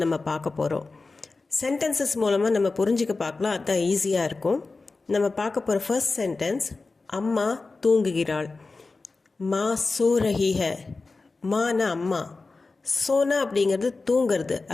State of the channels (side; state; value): right; quieter; 3.8 dB